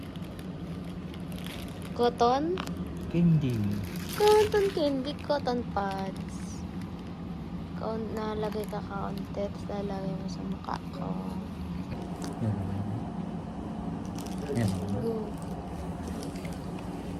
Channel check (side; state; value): both; identical; correlation 1.00